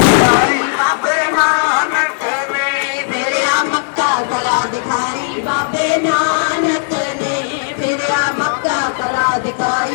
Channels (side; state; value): right; silent; digital silence